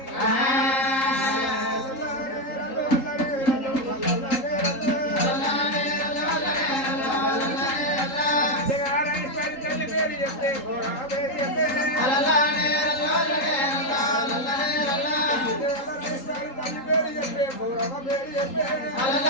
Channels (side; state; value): right; late; 3.8 ms